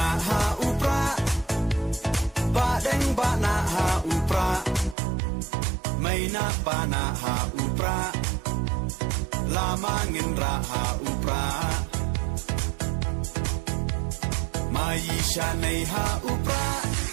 ha upra ba deng ba na ha upra mai na pa na ha upra lama ngin ra ha upra mai sha nei ha upra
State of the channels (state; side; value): drops out; left; at 5.0 s